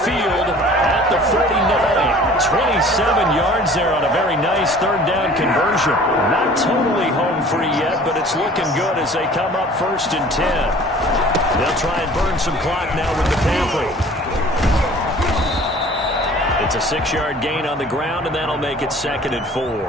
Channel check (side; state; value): both; normal; correlation 0.48